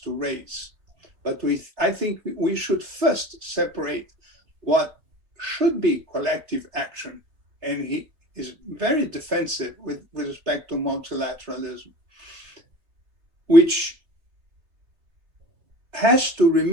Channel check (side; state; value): left; late; 3.4 ms